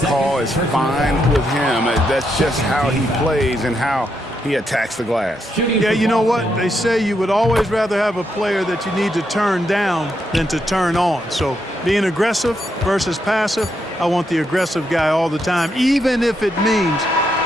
call is fine with him. That's just how he plays and how he attacks the glass. Yeah, you know what? They say you would always rather have a player that you need to turn down than to turn on. So being aggressive versus passive, I want the aggressive guy all the time, even if it means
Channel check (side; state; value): both; normal; correlation 0.80